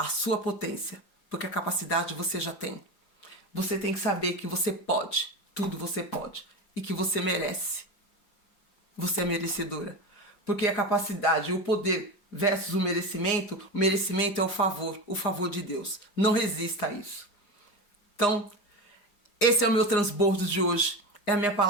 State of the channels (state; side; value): late; right; 4.9 ms